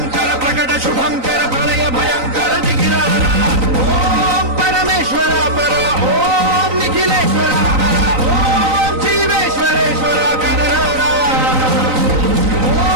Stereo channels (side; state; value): left; late; 3.9 ms